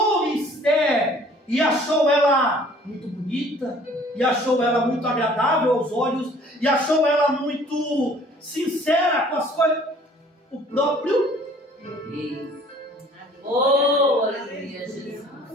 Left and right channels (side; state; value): both; normal; correlation 0.54